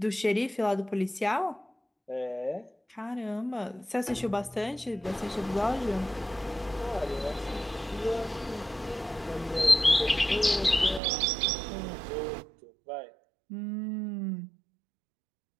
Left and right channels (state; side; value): drops out; left; at 11.0 s